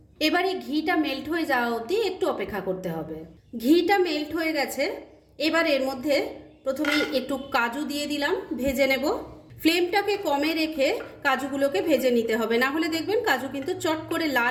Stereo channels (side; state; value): both; identical; correlation 1.00